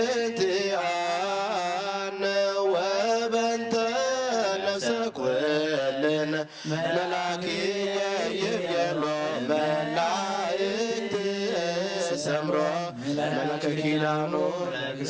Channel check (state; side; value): identical; both; correlation 1.00